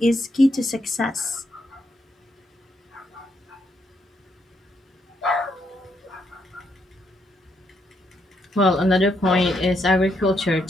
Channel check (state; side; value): normal; both; correlation 0.77